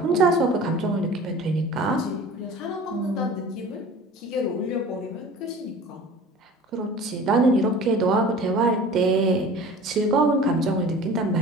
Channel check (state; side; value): normal; both; correlation 0.41